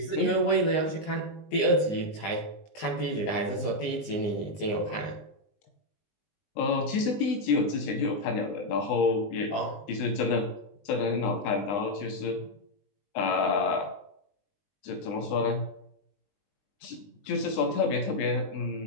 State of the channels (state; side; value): late; right; 19 ms